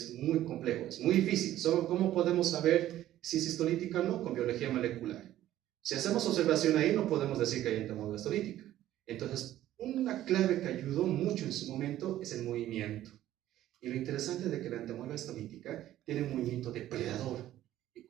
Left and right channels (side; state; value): left; quieter; 13.4 dB